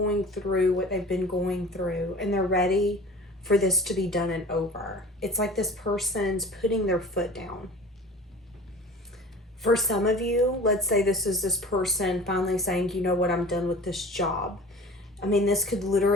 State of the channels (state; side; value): normal; both; correlation 0.42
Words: through what they've been going through, and they're ready for this to be done and over. It's like this person's putting their foot down. For some of you, let's say this is this person finally saying, you know what, I'm done with this job. I mean, this could